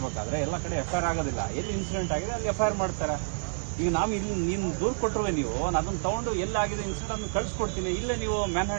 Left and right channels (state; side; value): silent; left; digital silence